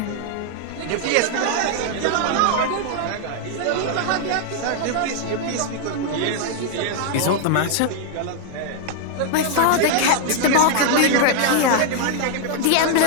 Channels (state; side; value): different; both; correlation 0.00